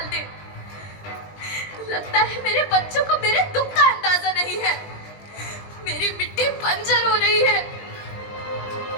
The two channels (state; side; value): late; right; 20 ms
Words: दे। लगता है मेरे बच्चों को मेरे दुख का अंदाजा नहीं है। मेरी मिट्टी बंजर हो रही है।